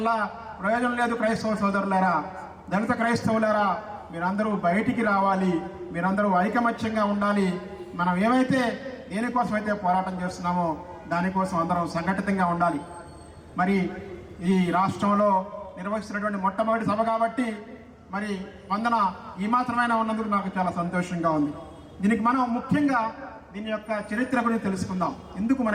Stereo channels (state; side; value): identical; both; correlation 1.00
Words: ప్రయోజనం లేదు. క్రైస్తవ సోదరులారా, దళిత క్రైస్తవులారా, మీరందరూ బయటికి రావాలి, మీరందరూ ఐకమత్యంగా ఉండాలి. మనం ఏమైతే దేనికోసమైతే పోరాటం చేస్తున్నామో దానికోసం అందరం సంఘటితంగా ఉండాలి. మరి ఈ రాష్ట్రంలో నిర్వహిస్తున్నటువంటి మొట్టమొదటి సభ కాబట్టి మరి వందన ఈ మాత్రమైనా ఉన్నందుకు నాకు చాలా సంతోషంగా ఉంది. దీనికి మనం ముఖ్యంగా దీని యొక్క చరిత్ర గురించి తెలుసుకుందాం, ఎందుకు